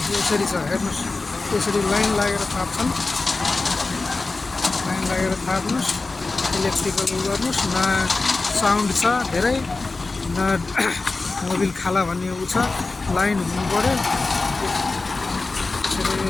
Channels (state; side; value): quieter; right; 3.6 dB